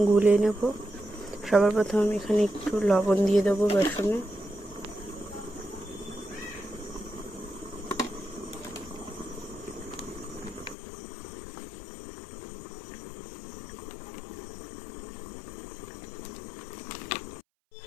গুলে নেব। সবার প্রথমে আমি এখানে একটু লবণ দিয়ে দেবো বেসনে।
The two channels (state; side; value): drops out; right; at 10.8 s